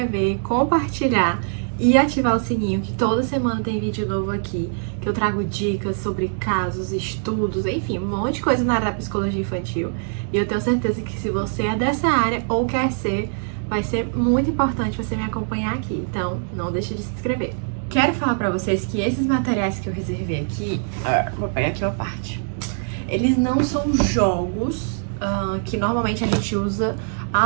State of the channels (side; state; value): left; silent; digital silence